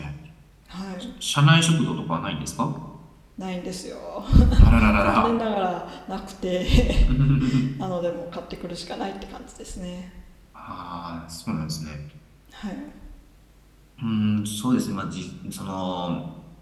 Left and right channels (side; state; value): both; identical; correlation 1.00